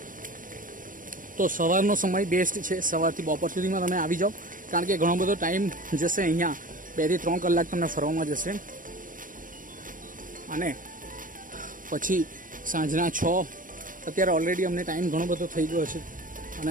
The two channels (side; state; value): left; late; 0.39 ms